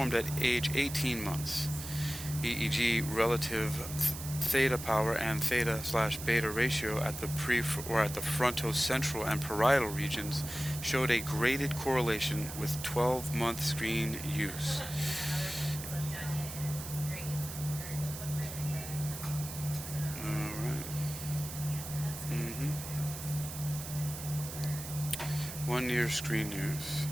at age 18 months. EEG relative theta power and theta/beta ratio at the fronto-central and parietal regions showed a graded correlation with 12-month screen use. Alright. 1 year screen use.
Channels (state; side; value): noise; right; hiss, 9 dB below the sound